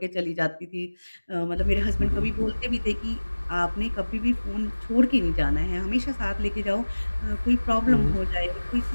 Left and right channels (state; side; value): inverted; both; correlation -1.00